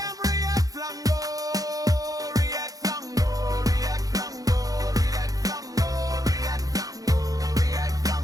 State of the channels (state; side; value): late; left; 0.17 ms